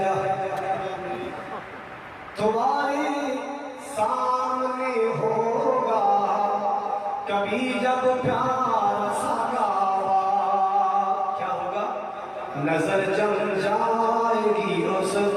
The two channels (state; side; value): identical; both; correlation 1.00